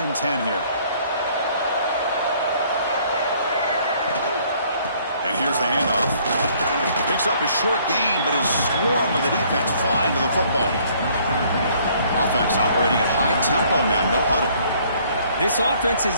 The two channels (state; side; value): inverted; both; correlation -0.61